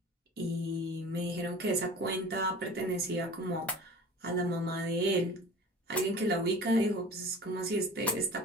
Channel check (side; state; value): both; normal; correlation 0.40